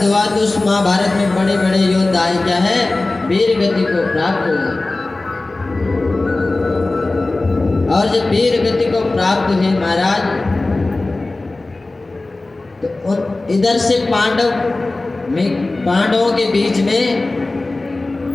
हुआ। तो उस महाभारत में बड़े बड़े योद्धा क्या है वीर गति को प्राप्त हुए। और जब वीर गति को प्राप्त हुए महाराज, तो इधर से पांडवों के बीच में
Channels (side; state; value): right; quieter; 3.1 dB